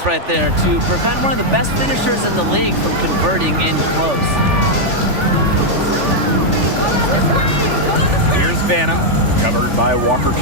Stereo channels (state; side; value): late; left; 3.4 ms